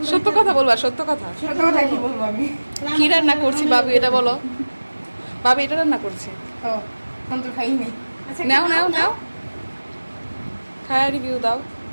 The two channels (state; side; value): inverted; both; correlation -1.00